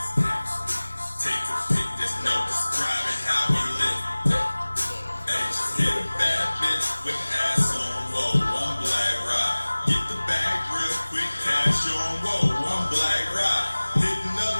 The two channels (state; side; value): inverted; both; correlation -1.00